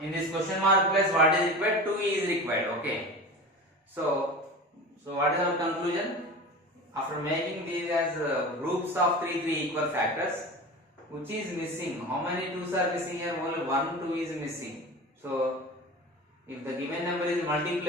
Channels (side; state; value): both; normal; correlation 0.32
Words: In this question mark place, what is required? 2 is required. Okay. So what is our conclusion? After making these as groups of 3 equal factors, which is missing? How many 2's are missing here? Only 1 2 is missing. So if the given number is